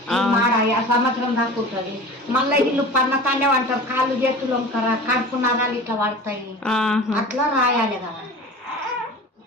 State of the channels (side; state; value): both; normal; correlation 0.36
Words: మాడ సంవత్సరం దాకా ఉంటుంది. మళ్ళీ వీళ్ళు పన్నకానే అంటారు, కాళ్ళు చేతులు వంకరా కడుపు నరాలు ఇట్లా పడతాయి, అట్లా రాయాలి కదా.